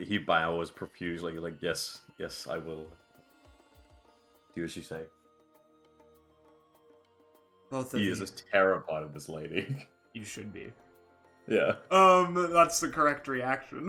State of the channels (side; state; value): both; identical; correlation 1.00